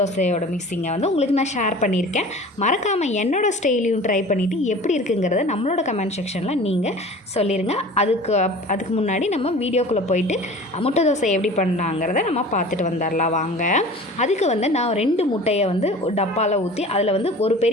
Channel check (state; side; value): normal; both; correlation 0.41